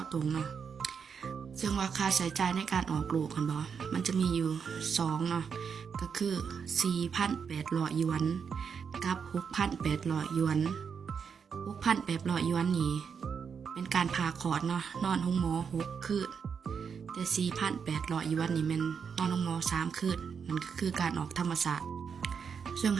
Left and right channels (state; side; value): quieter; left; 6.5 dB